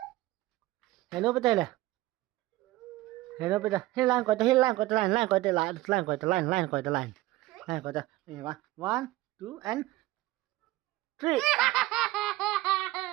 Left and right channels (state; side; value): quieter; left; 17.2 dB